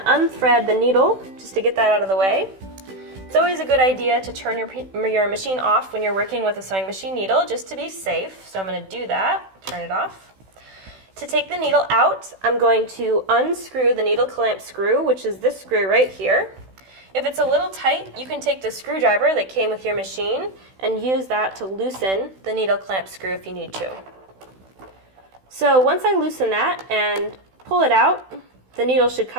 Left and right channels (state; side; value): late; left; 16 ms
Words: unthread the needle just to get that out of the way. It's always a good idea to turn your machine off when you're working with a sewing machine needle just to be safe, so I'm going to do that, turn it off. To take the needle out, I'm going to unscrew the needle clamp screw, which is this screw right here. If it's a little tight, you can take the screwdriver that came with your machine and use that to loosen the needle clamp screw if you need to. So once I loosen that and pull it out, the needle should